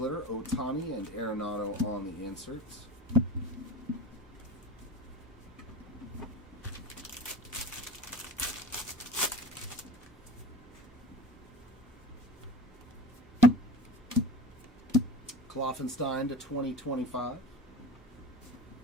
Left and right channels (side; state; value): both; normal; correlation 0.35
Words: Ohtani and Arenado on the inserts. Kloffenstein to 2025.